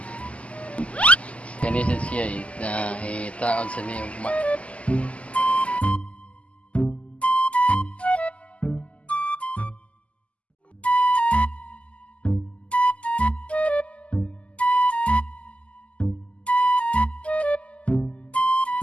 Kanisan siya taon sa niyo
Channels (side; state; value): right; late; 0.062 ms